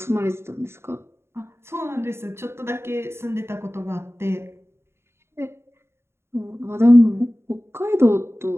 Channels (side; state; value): left; late; 0.12 ms